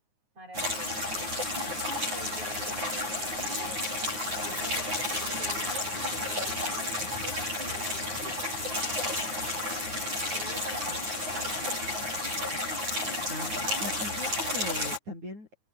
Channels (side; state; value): left; late; 9.5 ms